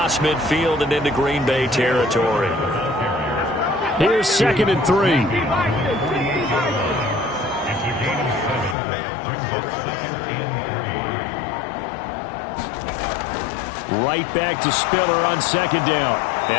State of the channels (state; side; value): drops out; right; at 8.8 s